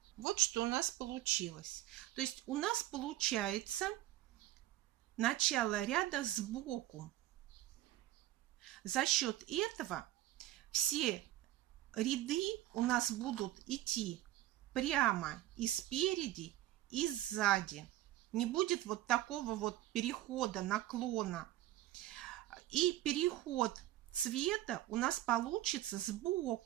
Вот что у нас получилось. То есть у нас получается начало ряда сбоку. За счет этого все ряды у нас будут идти прямо и спереди, и сзади. Не будет вот такого вот перехода, наклона. И переход цвета у нас получится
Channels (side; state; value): left; quieter; 14.9 dB